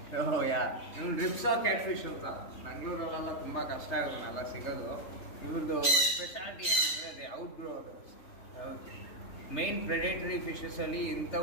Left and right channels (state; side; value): late; right; 3.3 ms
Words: ಯಾ ಇವ್ನು ರಿಪ್ಸಾ ಕ್ಯಾಟ್ ಫಿಶ್ ಅಂತ ಬೆಂಗಳೂರಲ್ಲೆಲ್ಲ ತುಂಬ ಕಷ್ಟ ಇವನ್ನೆಲ್ಲ ಸಿಗೋದು. ಇವ್ರದ್ದು ಸ್ಪೆಷಾಲಿಟಿ ಏನಂದರೆ ಅದೇ ಔಟ್ ಗ್ರೋ ಅದು. ಮೈನ್ ಪ್ರೆಡೇಟರಿ ಫಿಶಸಲ್ಲಿ